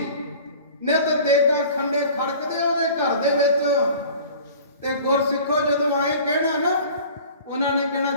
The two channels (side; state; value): both; inverted; correlation -0.44